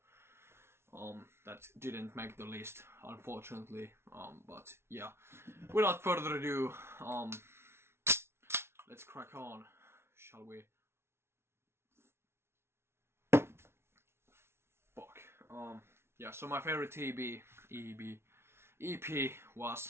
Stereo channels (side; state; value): left; late; 0.12 ms